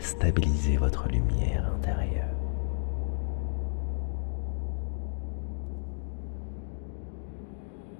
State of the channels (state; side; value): silent; right; digital silence